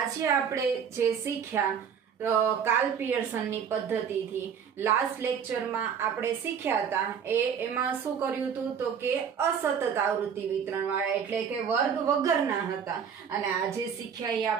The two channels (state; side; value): quieter; left; 7.4 dB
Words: આપણે જે શીખ્યા કાર્લ પિયર્સનની પદ્ધતિથી લાસ્ટ લેક્ચરમાં આપણે શીખ્યા હતા એમાં શું કર્યું હતું તો કે અસતત આવૃત્તિ વિતરણ વાળા, એટલે કે વર્ગ વગરના હતા, અને આજે શીખ્યા એ